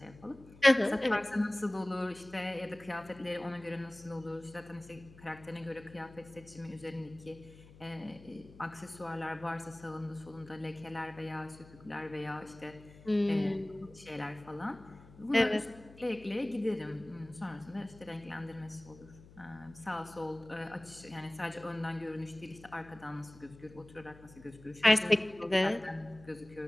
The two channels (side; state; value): left; noise; hum, 21 dB below the sound